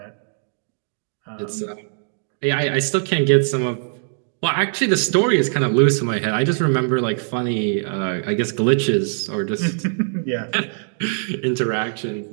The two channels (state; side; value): silent; left; digital silence